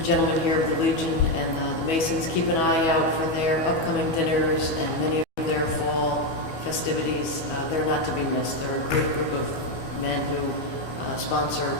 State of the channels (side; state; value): right; late; 12 ms